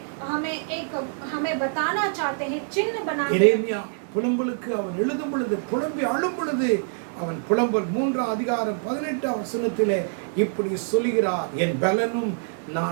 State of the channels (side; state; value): left; silent; digital silence